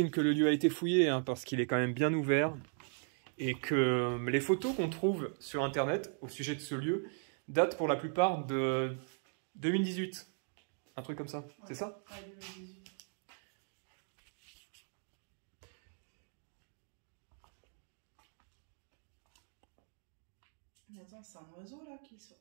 que le lieu a été fouillé, hein, parce qu'il est quand même bien ouvert. Et que les photos qu'on trouve sur Internet, au sujet de ce lieu, datent pour la plupart de 2018. Un truc comme ça. Ouais. C'est ça? Ouais, 2018. Mais attends, c'est un oiseau là qui sort.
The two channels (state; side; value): silent; left; 53 dB below the other